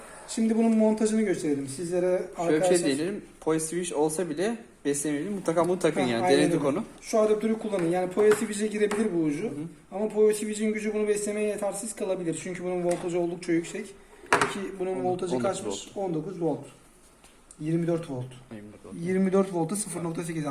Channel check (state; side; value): identical; both; correlation 1.00